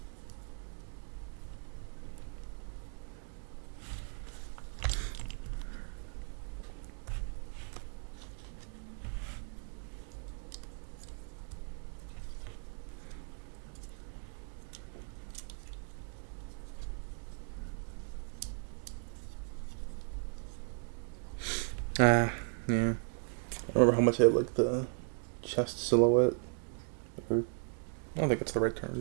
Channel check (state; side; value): silent; left; 53 dB below the other